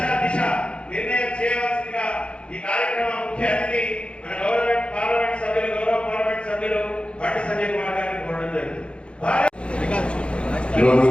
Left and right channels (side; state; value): right; late; 0.058 ms